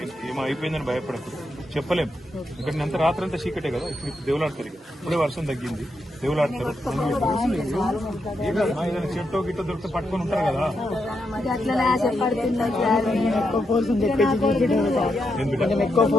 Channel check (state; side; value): normal; both; correlation 0.83